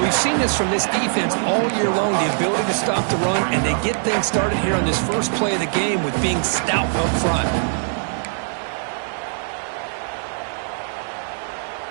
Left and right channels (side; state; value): left; silent; digital silence